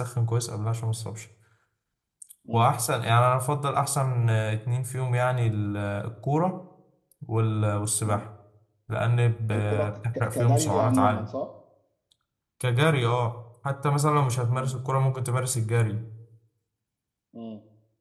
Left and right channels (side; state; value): both; identical; correlation 1.00